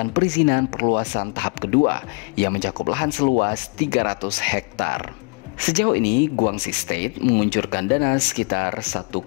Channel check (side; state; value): right; quieter; 34.0 dB